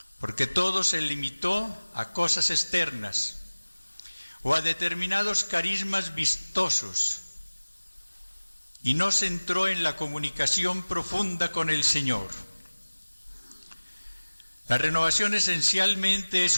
porque todo se limitó a cosas externas o a determinados carismas vistosos y no se entró en la comunicación profunda con el Señor. La renovación esencialmente es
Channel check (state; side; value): inverted; both; correlation -1.00